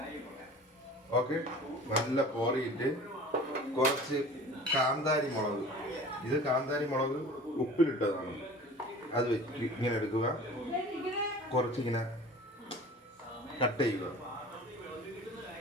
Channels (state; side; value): normal; both; correlation 0.42